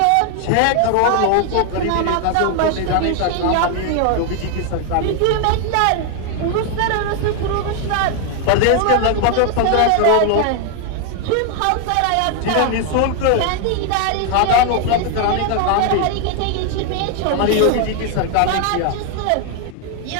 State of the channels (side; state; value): both; different; correlation 0.00